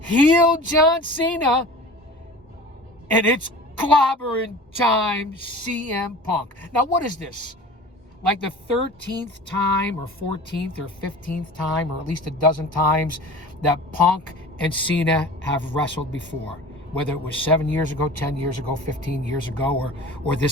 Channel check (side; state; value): both; normal; correlation 0.39